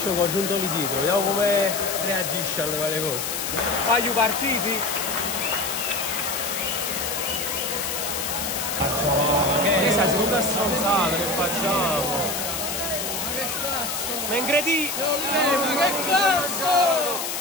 con giuntoli dietro, vediamo come reagisce alle varie cose. Wagyu partiti? Che sta seconda stronzata che facciamo? Ma che cazzo? Ma ingredi! Ma che cazzo?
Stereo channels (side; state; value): left; noise; hiss, 3 dB below the sound